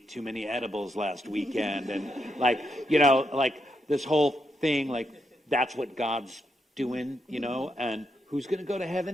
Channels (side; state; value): both; normal; correlation 0.81